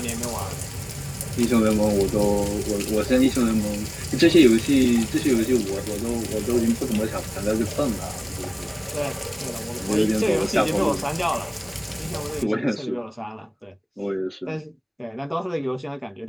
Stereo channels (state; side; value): identical; both; correlation 1.00